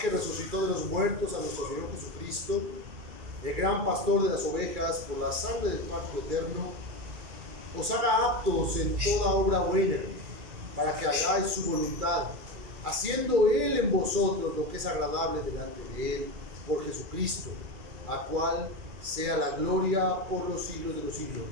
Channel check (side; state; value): left; late; 2.4 ms